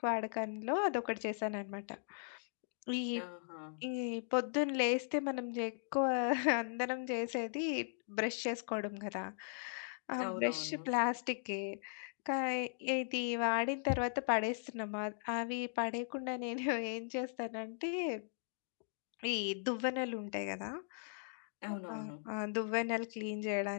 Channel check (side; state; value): right; silent; digital silence